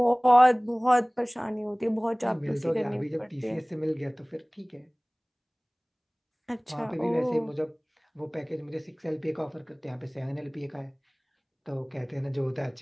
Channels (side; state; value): both; identical; correlation 1.00